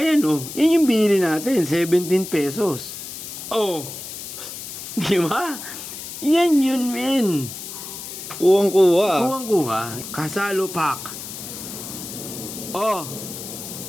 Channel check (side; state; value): left; noise; hiss, 10 dB below the sound